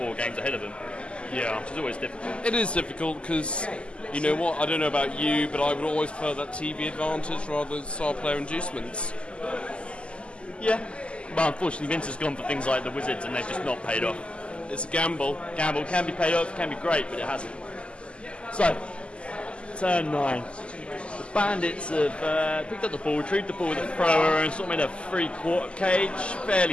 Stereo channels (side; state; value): right; late; 0.053 ms